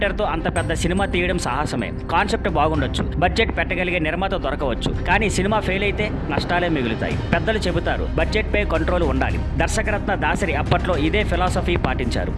తో అంత పెద్ద సినిమా తీయడం సాహసమే. కాన్సెప్ట్ బాగుండొచ్చు, బడ్జెట్ పెట్టగలిగే నిర్మాత దొరకవచ్చు. కానీ సినిమా ఫెయిల్ అయితే నష్టాలే మిగులుతాయి. పెద్దలు చెబుతారు బడ్జెట్ పై కంట్రోల్ ఉండాలి. దర్శకరత్న దాసరి అప్పట్లో ఇదే ఫిలాసఫీ పాటించారు.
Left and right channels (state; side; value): identical; both; correlation 1.00